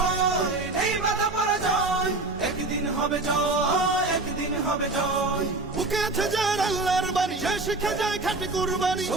নেই বাধা পরাজয়, একদিন হবে জয়, একদিন হবে জয়। বুকে আছে যার আল্লাহর বাণী, সে শিখে যায় খাঁটি কুরবানি,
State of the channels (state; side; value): quieter; left; 3.2 dB